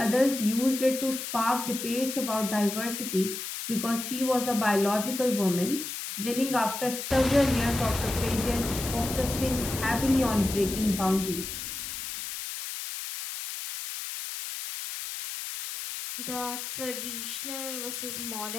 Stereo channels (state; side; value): noise; left; hiss, 6 dB below the sound